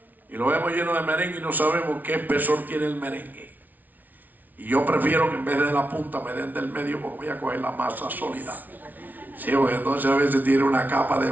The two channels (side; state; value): left; late; 0.080 ms